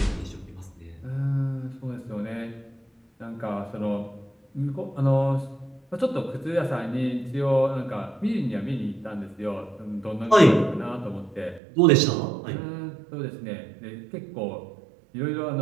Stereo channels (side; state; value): left; drops out; at 11.6 s